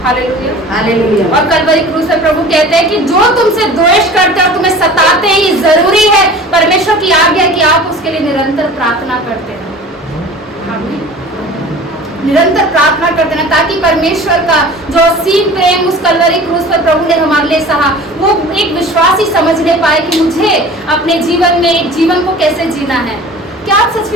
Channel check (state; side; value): normal; both; correlation 0.41